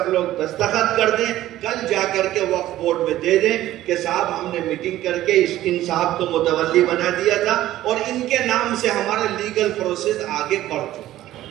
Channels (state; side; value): quieter; left; 14.3 dB